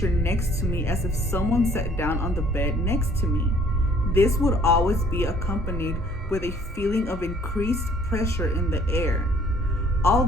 next to me as if someone sat down on the bed next to me. This would always be accompanied with a feeling of increased pressure in the air.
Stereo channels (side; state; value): both; normal; correlation 0.58